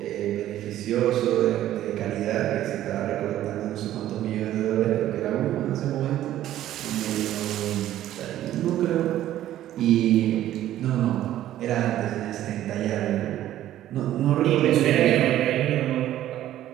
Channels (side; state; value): left; quieter; 13.0 dB